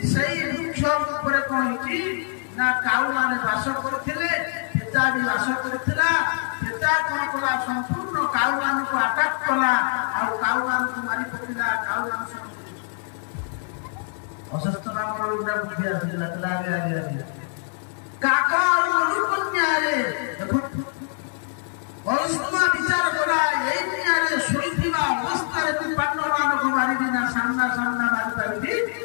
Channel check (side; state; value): right; silent; 60 dB below the other